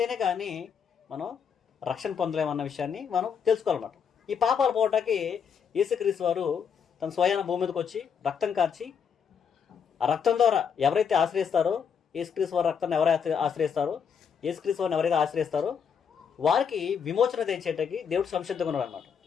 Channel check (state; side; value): quieter; right; 7.0 dB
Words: కానీ మనం రక్షణ పొందలేమన్న విషయాన్ని మనం తెలుసుకోవాలన్నమాట. ఈ పాపాలు పోవటానికి యేసుక్రీస్తు వారు తన స్వయాన భూమి మీదకి వచ్చి రక్తం కార్చి, ఆ రక్తం ద్వారా ఎవరైతే ఆశ్రయిస్తారో, యేసుక్రీస్తు వారి రక్తాన్ని ఎవరైతే ఆశ్రయిస్తారో, యేసుక్రీస్తు వారిని ఎవరైతే ఆశ్రయిస్తారో వారికి విమోచన తెచ్చేటకి దేవుడు సంసిద్ధంగా ఉన్నాడు అనమాట.